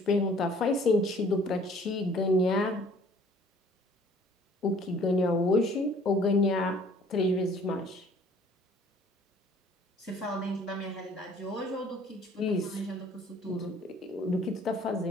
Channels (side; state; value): both; normal; correlation 0.55